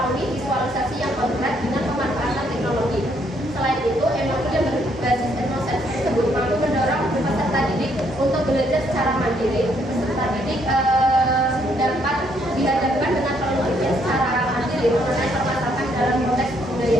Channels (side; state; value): both; normal; correlation 0.70